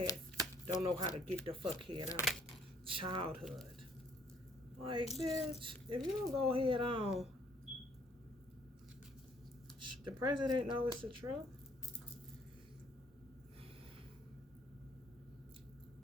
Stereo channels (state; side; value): normal; both; correlation 0.63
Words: don't know how to get the fuck head on. Childhood. Like, bitch, if you don't go head on, the president knows it's the truth.